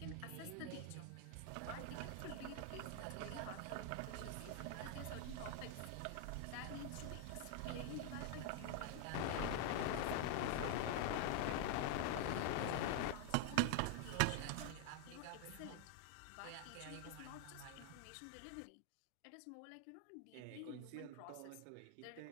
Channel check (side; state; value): both; different; correlation 0.00